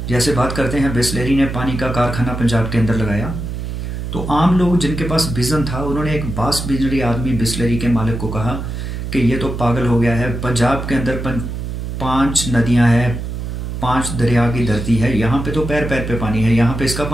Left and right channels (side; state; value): right; noise; hum, 5 dB below the sound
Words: जैसे बात करते हैं, बिस्लेरी ने पानी का कारखाना पंजाब के अंदर लगाया। तो आम लोग जिनके पास विजन था उन्होंने एक वास्ट विजनरी आदमी बिस्लेरी के मालिक को कहा कि ये तो पागल हो गया है। पंजाब के अंदर 5 नदियां हैं, 5 दरिया की धरती है, यहाँ पे तो पैर पैर पे पानी है, यहाँ पे इसका